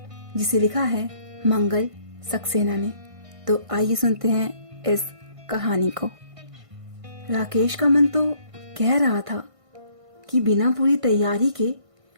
जिसे लिखा है मंगल सक्सेना ने। तो आइए सुनते हैं इस कहानी को। राकेश का मन तो कह रहा था कि बिना पूरी तैयारी के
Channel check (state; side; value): late; left; 1.5 ms